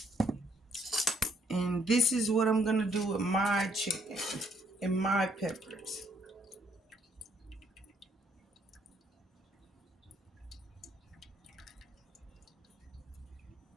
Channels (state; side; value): normal; both; correlation 0.67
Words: And this is what I'm going to do with my chicken and my peppers.